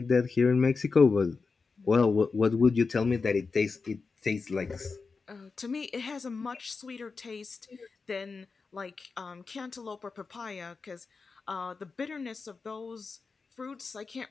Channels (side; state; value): right; quieter; 4.6 dB